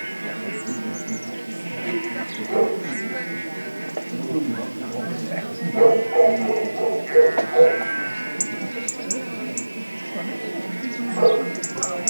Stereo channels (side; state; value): both; inverted; correlation -1.00